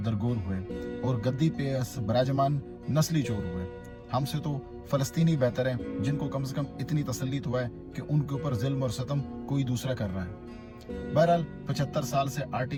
दरगोर हुए और गद्दी पे बराजमान नस्ली चोर हुए। हमसे तो फलस्तीनी बेहतर है जिनको कम से कम इतनी तसल्ली तो है कि उनके ऊपर जुल्म और सितम कोई दूसरा कर रहा है। बहरहाल 75 साल से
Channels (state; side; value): identical; both; correlation 1.00